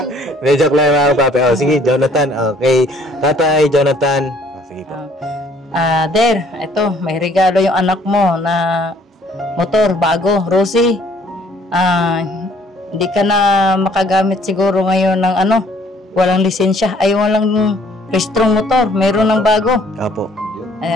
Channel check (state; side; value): normal; both; correlation 0.60